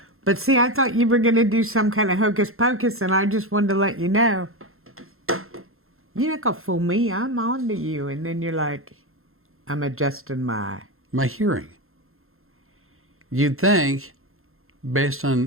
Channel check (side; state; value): left; late; 0.62 ms